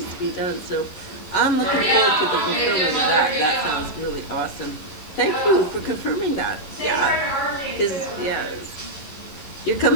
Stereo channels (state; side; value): late; right; 11 ms